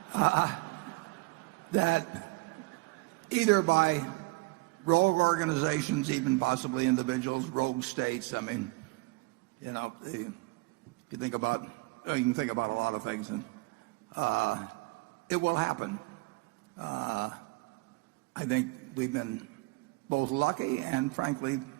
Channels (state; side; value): quieter; left; 24.3 dB